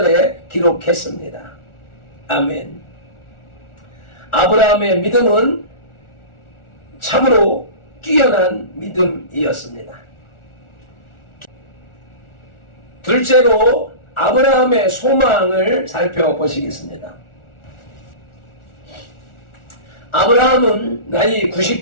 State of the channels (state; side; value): late; right; 1.4 ms